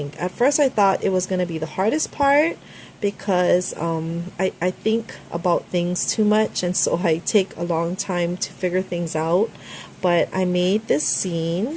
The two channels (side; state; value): both; identical; correlation 1.00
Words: At first I thought it was going to be the hardest part, because I think about things too much, and so I take a long time to figure things out. But I made this